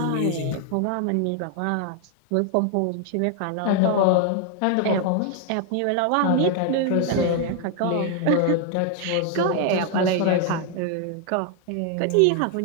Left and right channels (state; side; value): different; both; correlation 0.00